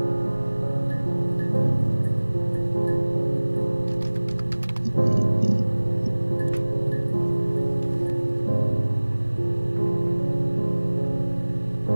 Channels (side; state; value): both; inverted; correlation -1.00